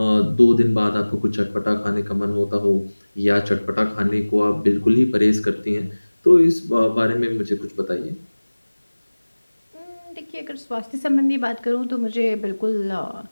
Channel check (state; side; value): inverted; both; correlation -1.00